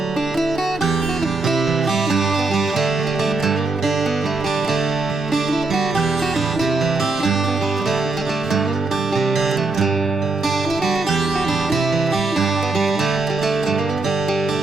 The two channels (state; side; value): quieter; left; 3.5 dB